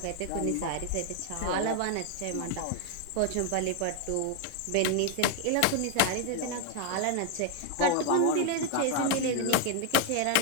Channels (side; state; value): both; different; correlation 0.00